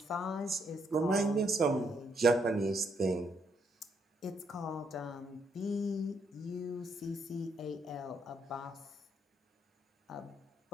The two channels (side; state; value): both; normal; correlation 0.74